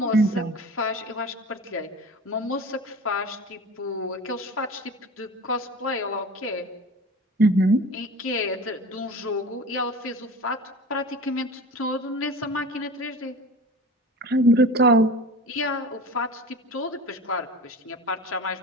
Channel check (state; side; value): normal; both; correlation 0.36